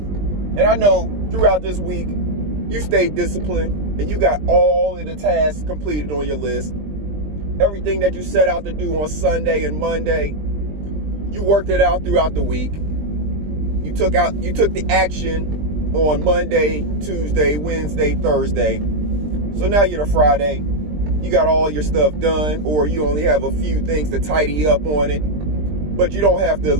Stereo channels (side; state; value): left; late; 20 ms